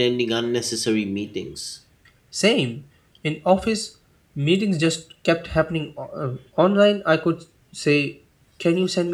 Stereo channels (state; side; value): identical; both; correlation 1.00